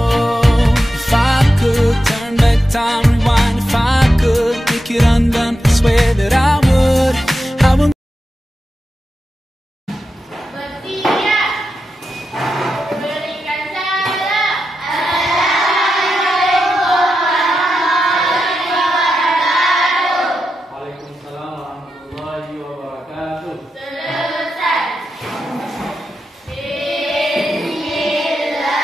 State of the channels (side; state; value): both; normal; correlation 0.89